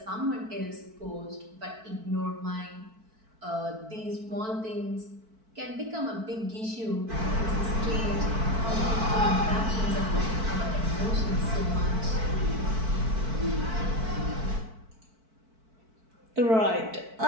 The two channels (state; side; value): late; left; 4.5 ms